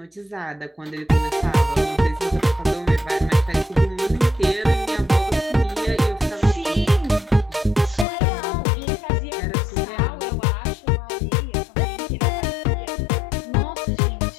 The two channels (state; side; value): drops out; right; at 8.1 s